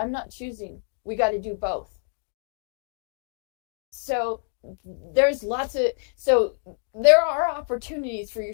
not choosing. We got to do both. So there are opportunities for your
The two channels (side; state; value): right; silent; digital silence